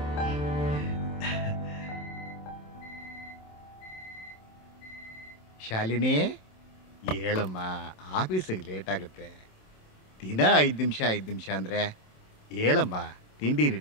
ಶಾಲಿನಿ, ಹೇಳಮ್ಮ, ಆಫೀಸಿಗೆ ಲೇಟ್ ಆಗುತ್ತೆ. ದಿನ 5 ನಿಮಿಷ ಅಂದರೆ ಹೇಳಮ್ಮ, ತಿಂಡಿ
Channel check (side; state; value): right; late; 27 ms